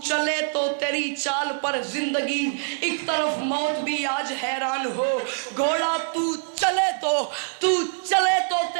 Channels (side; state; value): left; silent; 58 dB below the other